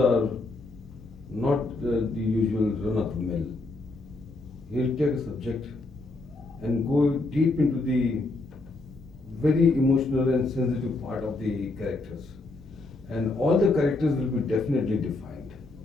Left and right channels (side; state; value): right; quieter; 3.1 dB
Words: not the usual run-of-the-mill. He'll take a subject and go deep into the very emotional and sensitive part of the characters. And all the characters will be definitely defined.